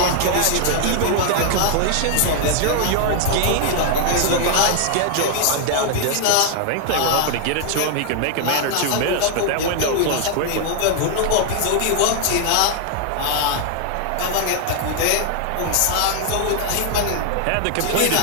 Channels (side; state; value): both; different; correlation 0.00